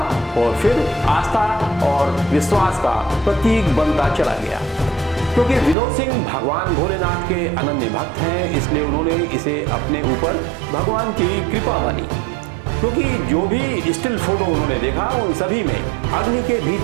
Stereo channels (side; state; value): left; drops out; at 5.8 s